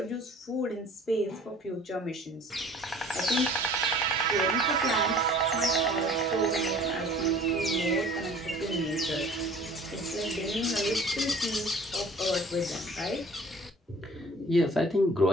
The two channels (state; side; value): normal; both; correlation 0.49